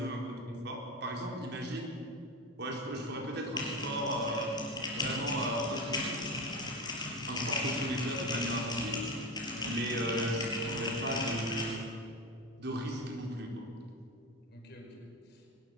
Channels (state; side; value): normal; both; correlation 0.21